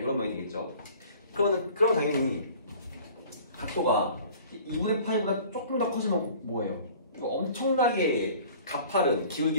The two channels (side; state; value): both; inverted; correlation -0.48